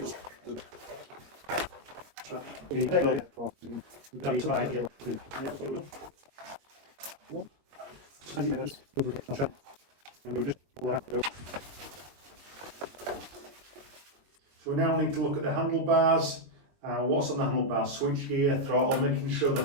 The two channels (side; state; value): left; late; 22 ms